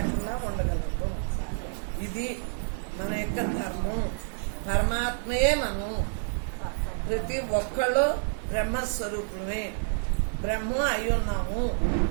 ఉండగలుగుతాం. ఇది మన యొక్క ధర్మం. పరమాత్మయే మనం. ప్రతి ఒక్కళ్ళు బ్రహ్మస్వరూపులమే, బ్రహ్మం అయి ఉన్నాము,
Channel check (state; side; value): silent; left; digital silence